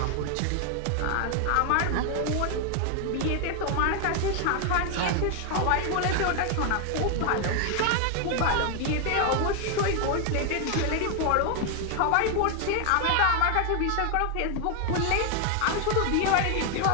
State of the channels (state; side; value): different; both; correlation 0.00